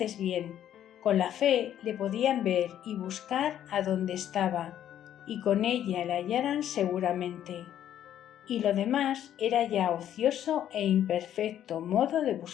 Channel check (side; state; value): right; quieter; 10.8 dB